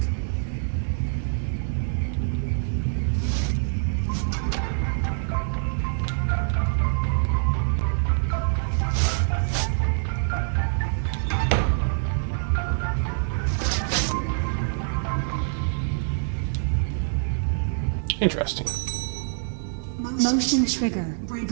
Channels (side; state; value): left; silent; digital silence